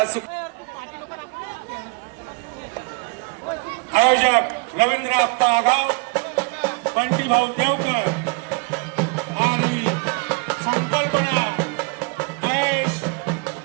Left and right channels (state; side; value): quieter; left; 30.9 dB